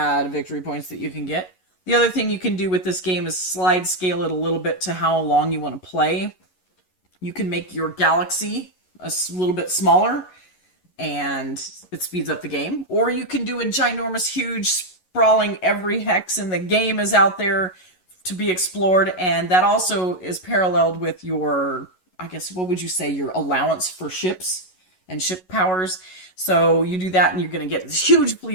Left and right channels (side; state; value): right; late; 11 ms